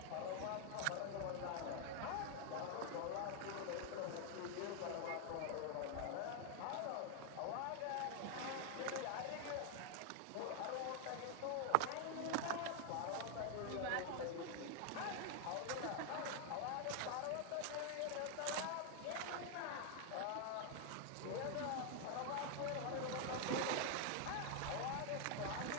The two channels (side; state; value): both; different; correlation 0.00